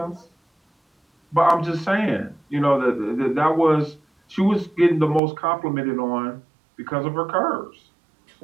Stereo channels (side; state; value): left; drops out; at 5.2 s